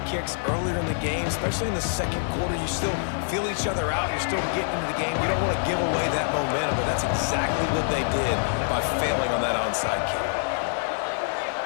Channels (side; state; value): right; silent; digital silence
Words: kicks earlier in the game, especially in the second quarter. You still feel each other out. You're still getting into the game. You don't want to give away that momentum, but that's exactly what they did by failing on that onside kick.